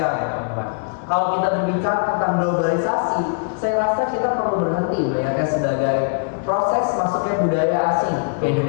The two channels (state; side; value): quieter; right; 38.1 dB